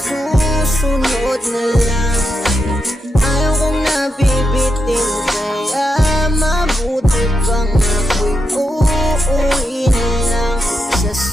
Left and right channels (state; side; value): normal; both; correlation 0.85